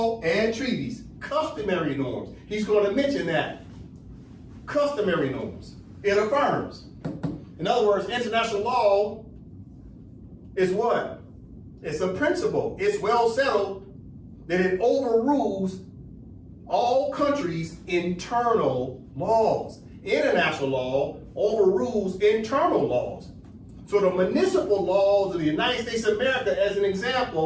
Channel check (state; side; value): identical; both; correlation 1.00